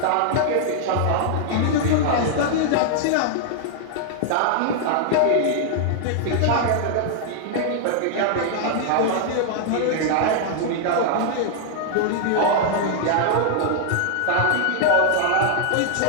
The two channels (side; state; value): both; different; correlation -0.01